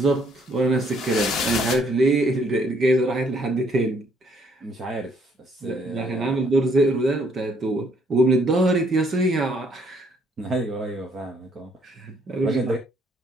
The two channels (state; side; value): normal; both; correlation 0.67